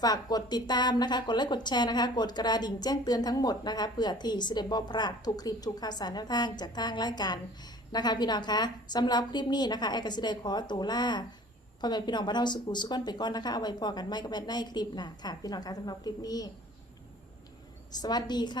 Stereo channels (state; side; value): normal; both; correlation 0.48